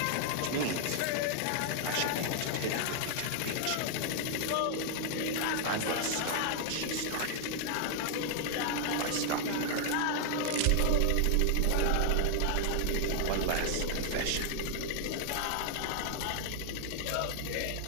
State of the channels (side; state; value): both; different; correlation 0.00